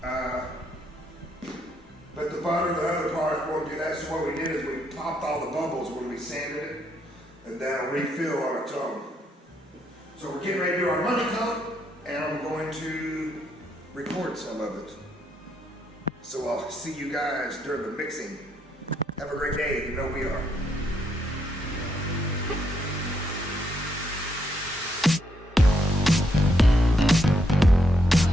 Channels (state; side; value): normal; both; correlation 0.75